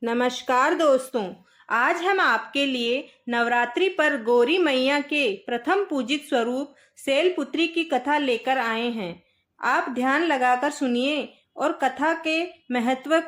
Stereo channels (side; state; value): both; identical; correlation 1.00